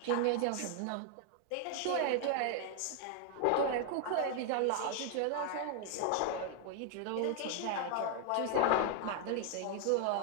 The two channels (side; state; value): both; different; correlation 0.00